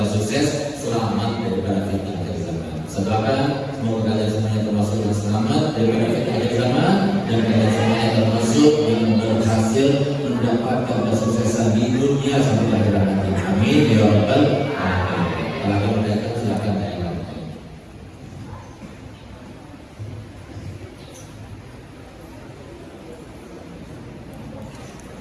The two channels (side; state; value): both; identical; correlation 1.00